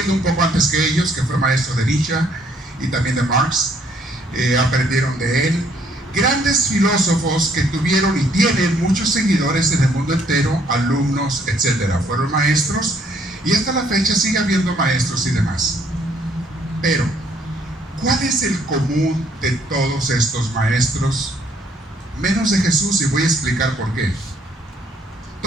un poco antes que ellos, que fue maestro de Nietzsche y también de Marx. Aprendieron de él. Grandes filósofos que tuvieron y tienen muchos seguidores en el mundo entero, alumnos, etc. Fueron maestros y hasta la fecha sigue habiendo maestros y demás. Pero, ¿cuál es el común de todos estos maestros? Menos de Jesús, y voy a explicar por qué.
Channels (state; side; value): normal; both; correlation 0.66